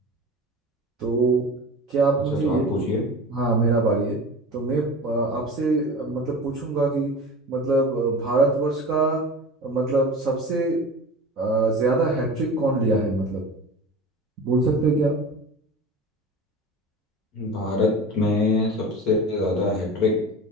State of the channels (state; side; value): normal; both; correlation 0.34